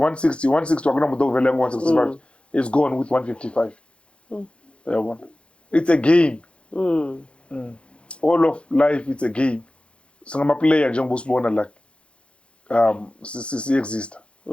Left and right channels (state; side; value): late; right; 0.059 ms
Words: 160 akunamuntu ovele ngo-165 is gone with 155 yabona. It's a game. All of life it's a game. Singama-player njengoba usibona like si-exista